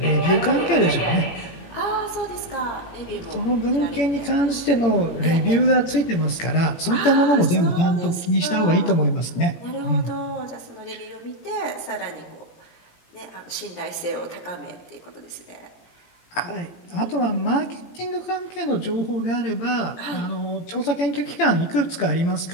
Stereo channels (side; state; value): right; late; 18 ms